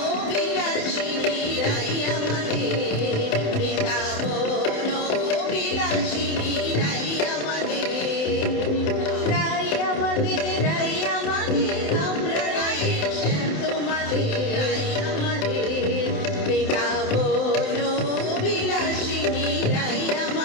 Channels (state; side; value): late; right; 27 ms